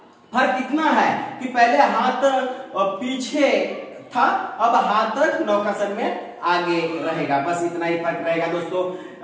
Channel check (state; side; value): identical; both; correlation 1.00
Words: फर्क इतना है कि पहले हाथ पीछे था, अब हाथ नौकासन में आगे रहेगा, बस इतना ही फर्क रहेगा दोस्तों।